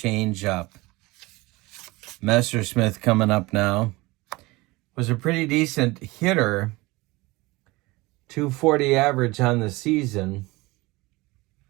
changeup. Messersmith coming up now. Was a pretty decent hitter .240 average on the season.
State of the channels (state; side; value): quieter; left; 22.1 dB